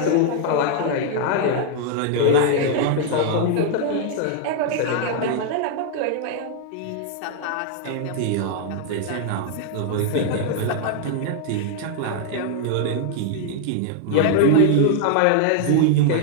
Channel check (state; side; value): different; both; correlation 0.00